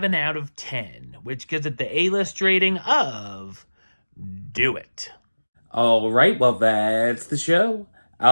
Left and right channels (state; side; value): inverted; both; correlation -1.00